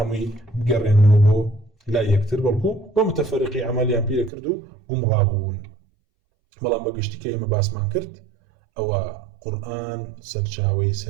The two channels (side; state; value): left; drops out; at 4.3 s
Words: بقرن بو لا يكتر بلكو ومتفرقي عمليا بيه كردو قمرابون بلان بقشتي كيما باسمان كرت أو قرآن سرچاوي